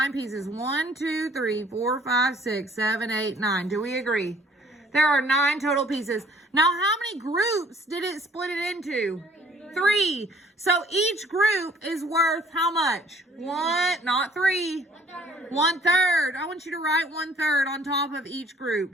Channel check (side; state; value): both; normal; correlation 0.58